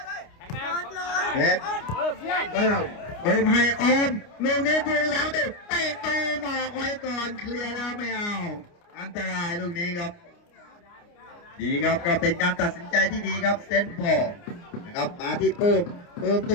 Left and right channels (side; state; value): right; late; 29 ms